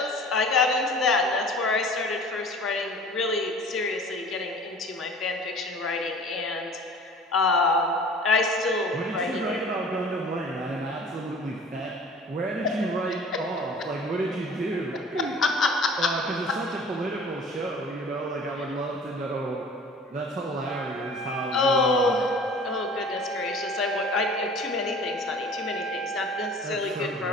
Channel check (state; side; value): normal; both; correlation 0.45